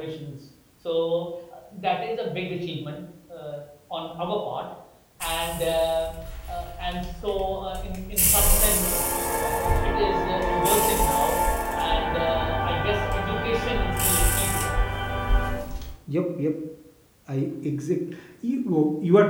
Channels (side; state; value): both; identical; correlation 1.00